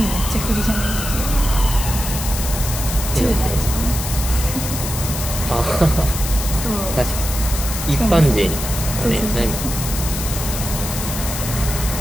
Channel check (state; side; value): noise; left; hiss, 6 dB below the sound